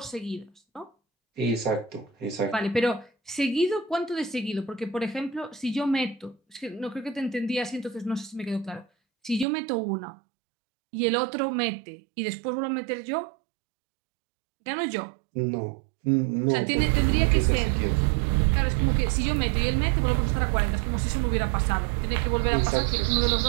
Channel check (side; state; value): left; drops out; at 9.5 s